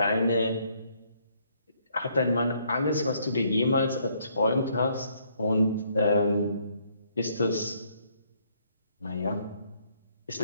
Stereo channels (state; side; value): inverted; both; correlation -0.68